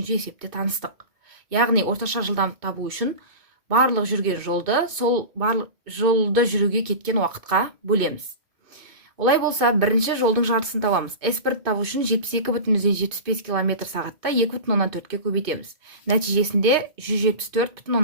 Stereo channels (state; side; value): late; left; 2.5 ms